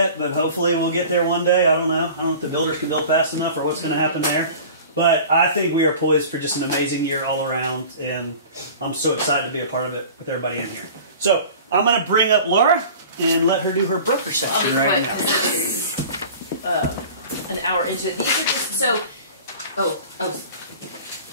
but hopefully we'll get there one day. I don't know. I don't know if the builders can build fast enough or what's going to happen there. But I think we are poised for just an amazing year all around, and I'm so excited to be a part of it with everybody in here. So I'm going to bring up Laura and let her do her broker section right now. An hour into it. These are just so.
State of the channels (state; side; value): inverted; both; correlation -0.41